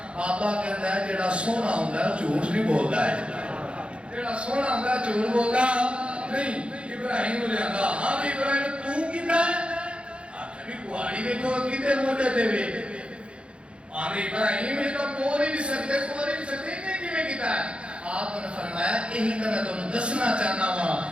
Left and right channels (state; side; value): late; left; 0.058 ms